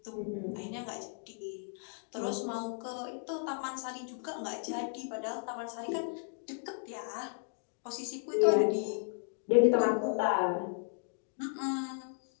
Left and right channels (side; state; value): right; silent; 55 dB below the other